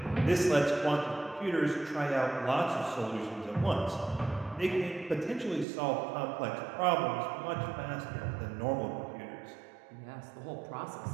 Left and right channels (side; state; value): left; drops out; at 5.7 s